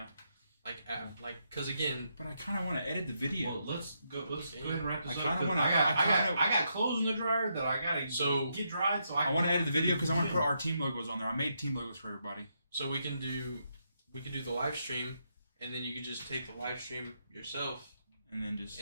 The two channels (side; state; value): both; inverted; correlation -0.80